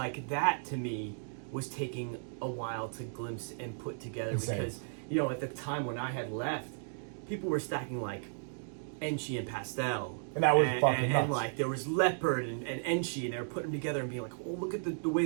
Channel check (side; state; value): left; silent; digital silence